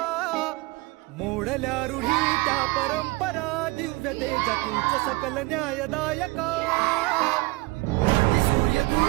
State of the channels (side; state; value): left; quieter; 23.1 dB